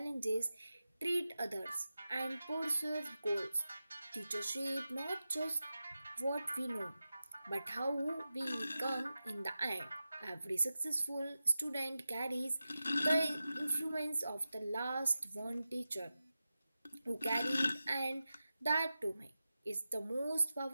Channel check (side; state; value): both; inverted; correlation -0.93